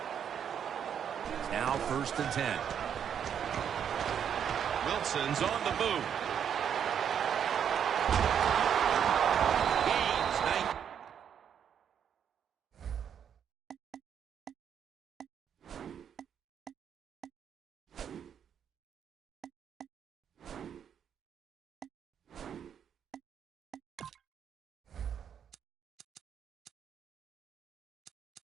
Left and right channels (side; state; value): left; quieter; 8.4 dB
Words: Now first and 10. Wilson's on the move. Gains 9.